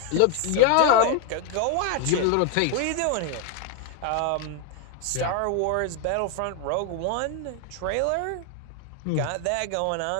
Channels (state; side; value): different; both; correlation 0.00